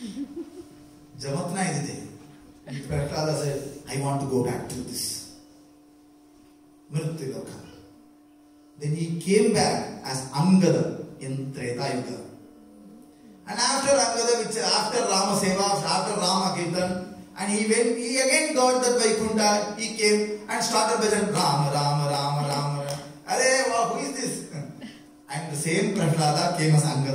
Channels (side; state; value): both; identical; correlation 1.00